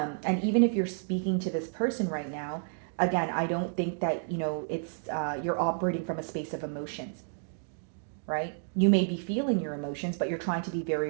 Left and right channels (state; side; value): silent; left; digital silence